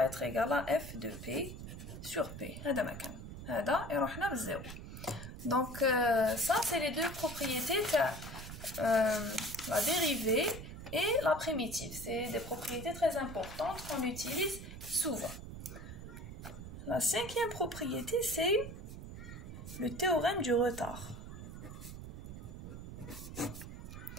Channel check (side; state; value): right; noise; rumble, 10 dB below the sound